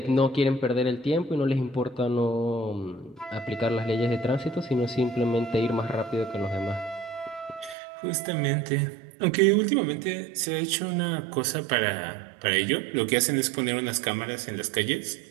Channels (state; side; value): drops out; left; at 7.8 s